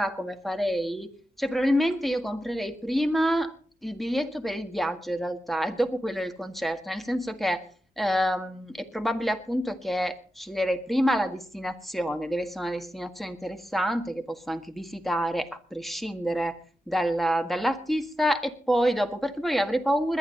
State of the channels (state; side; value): normal; both; correlation 0.91